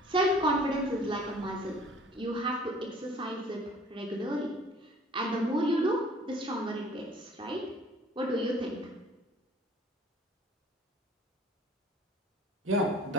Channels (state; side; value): normal; both; correlation 0.52